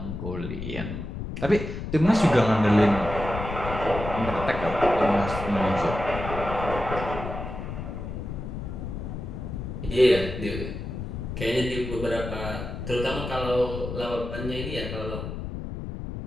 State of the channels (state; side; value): noise; left; rumble, 7 dB below the sound